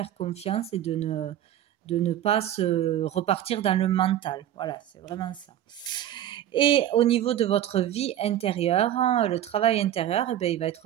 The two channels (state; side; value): quieter; left; 11.7 dB